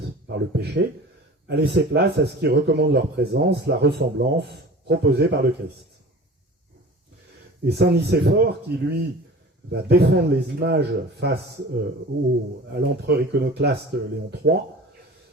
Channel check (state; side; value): normal; both; correlation 0.40